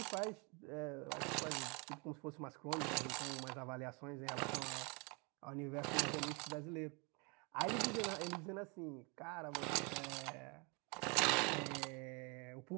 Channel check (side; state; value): left; quieter; 31.6 dB